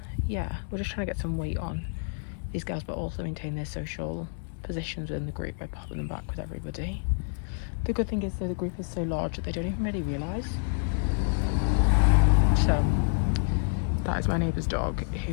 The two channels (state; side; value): silent; right; 59 dB below the other